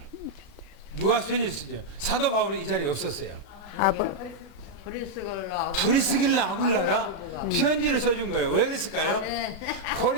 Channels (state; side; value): late; right; 36 ms